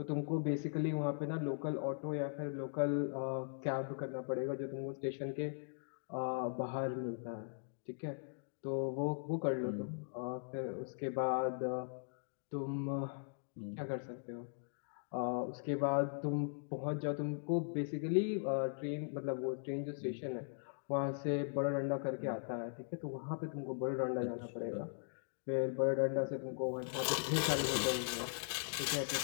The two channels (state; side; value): silent; right; digital silence